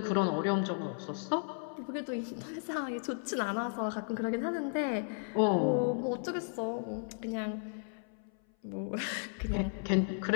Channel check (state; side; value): silent; right; 55 dB below the other